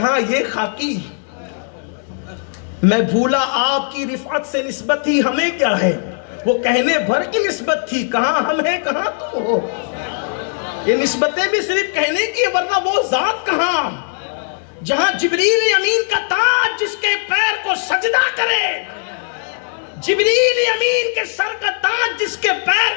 یہ خاکی. میں بھولا آپ کی رفعت سے نسبت ہی ہمیں کیا ہے، وہ کہنے بھر کی نسبت تھی، کہاں ہم ہیں کہاں تم ہو. یہ نسبتیں بھی صرف کہنے کی، ورنہ وہ ذات کہاں جہاں جبریل امین کا تاج جس کے پیر کو سجدہ کرے، جبریل امین کے سر کا تاج جس کے پیر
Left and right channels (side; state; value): right; silent; digital silence